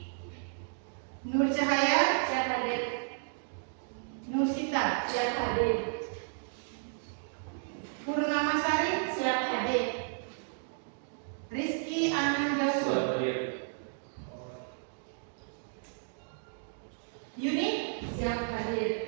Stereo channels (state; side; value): silent; left; digital silence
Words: Nur Cahaya Siap hadir. Nur Sita Siap hadir. Purnama Sari Siap hadir. Rizky Ananda Siap, adik. Yuni Siap